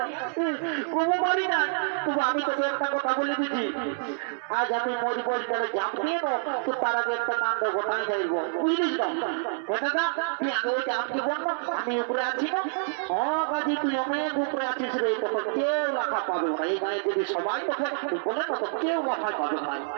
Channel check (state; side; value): silent; left; 60 dB below the other